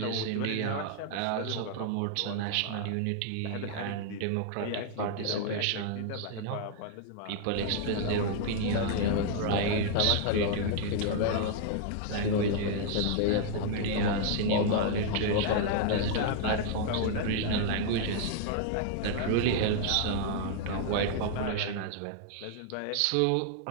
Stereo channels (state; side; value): different; both; correlation 0.00